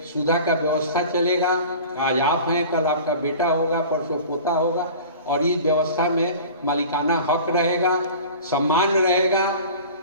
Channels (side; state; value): both; inverted; correlation -0.40